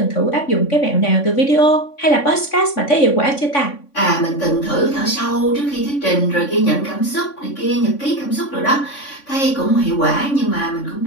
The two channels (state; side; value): late; right; 3.5 ms